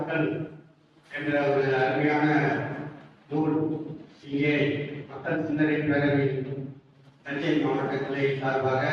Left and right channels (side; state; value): both; identical; correlation 1.00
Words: என்ற ஒரு அருமையான நூல் இங்கே மக்கள் சிந்தனை பேரவை தஞ்சை மாவட்ட கிளை சார்பாக